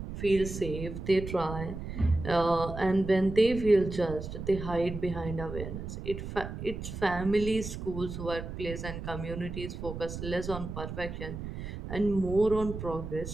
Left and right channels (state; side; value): noise; right; rumble, 8 dB below the sound